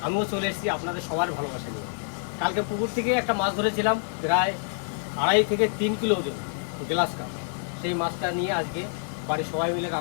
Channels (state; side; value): silent; right; 60 dB below the other